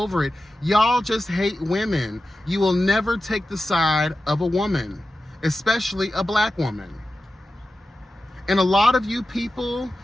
it. Y'all just hate women. You will never take the side of a woman, especially a black woman. And a lot of you people,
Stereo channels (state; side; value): normal; both; correlation 0.93